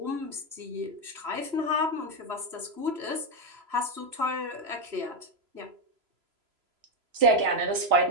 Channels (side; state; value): left; late; 3.0 ms